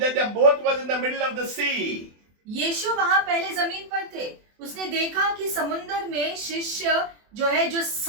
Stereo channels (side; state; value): left; late; 24 ms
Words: that the boat was in the middle of the sea. यीशु वहां पहले जमीन पर थे, उसने देखा कि समुद्र में शिष्य जो है जो